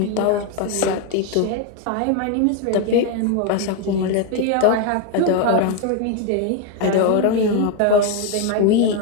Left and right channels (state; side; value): different; both; correlation 0.01